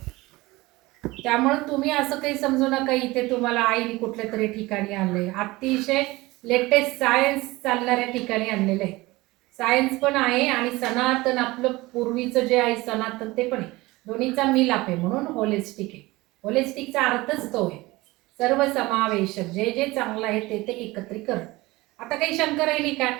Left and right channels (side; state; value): left; quieter; 20.7 dB